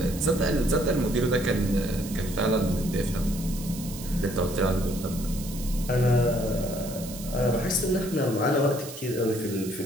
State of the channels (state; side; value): noise; right; hiss, 13 dB below the sound